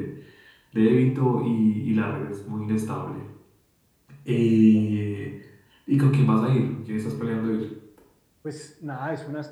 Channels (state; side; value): identical; both; correlation 1.00